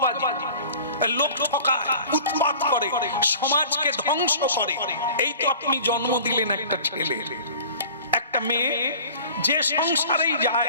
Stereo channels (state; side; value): inverted; both; correlation -0.43